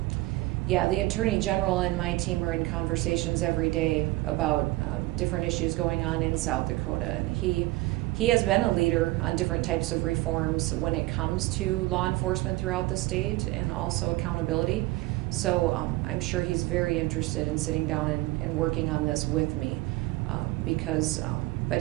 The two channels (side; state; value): left; quieter; 20.0 dB